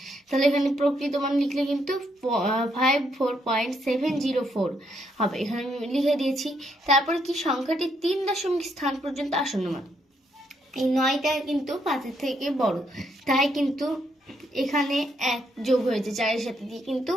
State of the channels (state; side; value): normal; both; correlation 0.75